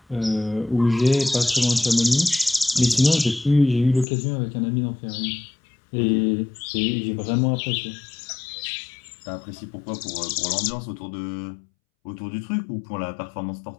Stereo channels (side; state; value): right; drops out; at 4.0 s